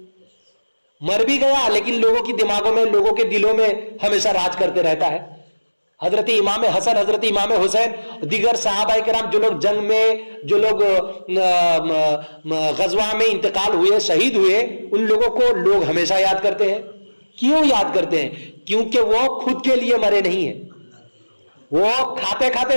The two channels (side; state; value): both; inverted; correlation -1.00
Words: مر بھی گیا لیکن لوگوں کی دماغوں میں، لوگوں کے دلوں میں ہمیشہ راج کرتے رہتا ہے. حضرت امام حسن، حضرت امام حسین، دیگر صحابہ کرام جو لوگ جنگ میں، جو لوگ غزوہ میں انتقال ہوئے، شہید ہوئے، ان لوگوں کو لوگ ہمیشہ یاد کرتے ہیں. کیوں یاد کرتے ہیں؟ کیونکہ وہ خود کے لیے مرے نہیں ہیں، وہ کھاتے کھاتے